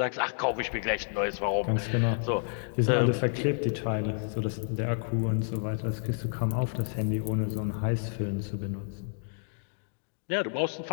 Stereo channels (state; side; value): silent; right; digital silence